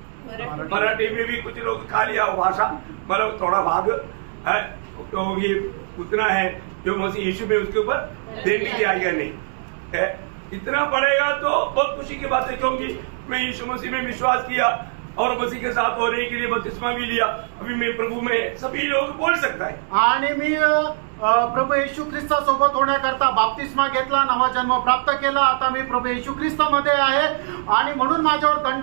मराठी में भी कुछ लोग खा लिया भाषा, मतलब थोड़ा भाग है, तो ये उतना है जो मसीह यीशु में उसके ऊपर देने की आज्ञा नहीं है। इतना पड़ेगा तो बहुत खुशी की बात है, क्योंकि मैं यीशु मसीह में विश्वास किया और मसीह के साथ होने के लिए बपतिस्मा भी लिया। अभी मैं प्रभु में सभी लोग बोल सकता है, आणि मी प्रभू येशू ख्रिस्तासोबत होण्याकरता बाप्तिस्मा घेतला, नवा जन्म प्राप्त केला, आता मी प्रभू येशू ख्रिस्तामध्ये आहे आणि म्हणून माझ्यावर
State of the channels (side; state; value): left; silent; digital silence